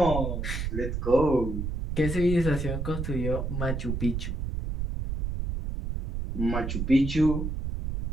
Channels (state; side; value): noise; right; rumble, 3 dB below the sound